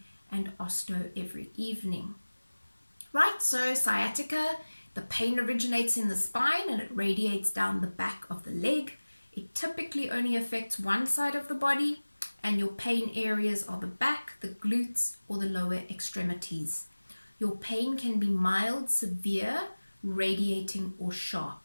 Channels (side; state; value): both; inverted; correlation -1.00